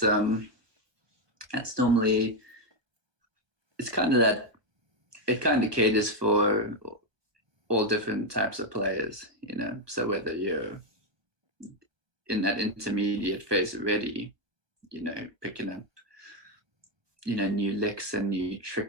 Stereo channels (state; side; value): late; left; 1.2 ms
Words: normally, it's kind of that, it kind of caters for all different types of players, So whether you're in that intermediate phase already, picking up, new licks and new